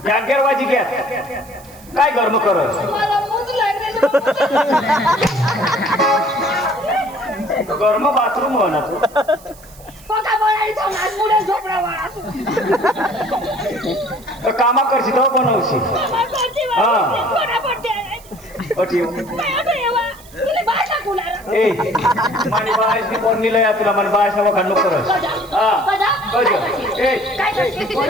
या गेरवाजी घ्या काय गरम करत मला मूत लागले गरम बाथरूम हो ना तू पका बनायचं ना मुळे झोपडा वाळा तर कामा करशी तो बनवशी हा अठीव ए मानी बायसनी कोण निलया तुला मन बायस नवा खंड करस हा कज ए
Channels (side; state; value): right; noise; hiss, 23 dB below the sound